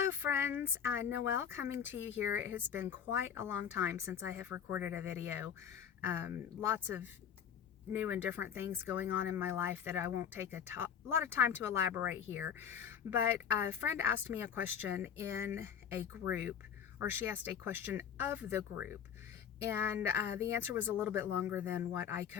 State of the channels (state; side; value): quieter; right; 8.2 dB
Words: Hello friends, Noelle coming to you here. It has been quite a long time since I have recorded a video. Lots of new and different things going on in my life that I won't take a lot of time to elaborate here. But a friend asked me a question in a group, or she asked a question of the group. And the answer was a little bit longer than what I